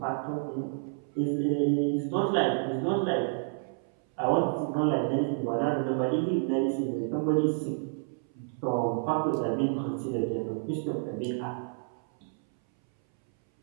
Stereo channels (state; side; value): silent; left; 58 dB below the other